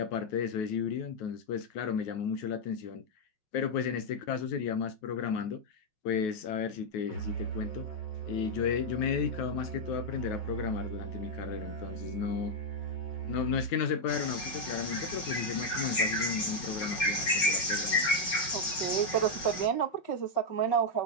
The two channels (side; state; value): right; late; 5.5 ms